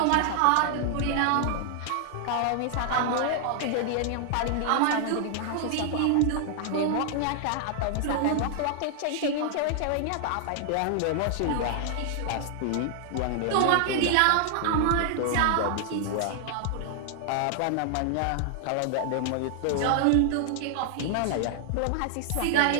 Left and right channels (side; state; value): both; different; correlation -0.01